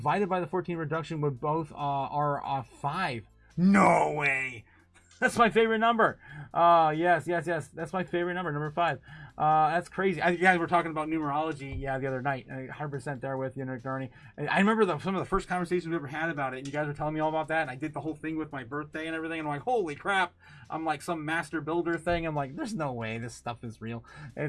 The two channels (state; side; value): identical; both; correlation 1.00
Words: by the 14 reduction would both are 5. No way. That's my favorite number. Yes. That's my favorite number 5. That's crazy. You guys were talking about numerology, the other night. 100% there with you, Nick Darney. I remember some of the first conversations we ever had about it, and you guys were telling me all about that, and I did the whole thing with my birthday and everything, and I'm like, holy crap. I'm like some master builder thing. I'm like, there's no way this stuff is real.